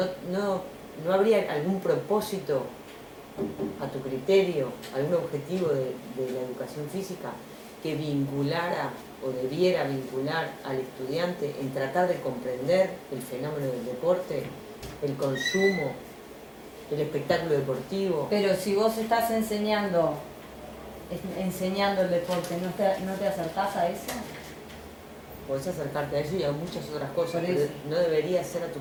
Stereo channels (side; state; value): both; identical; correlation 1.00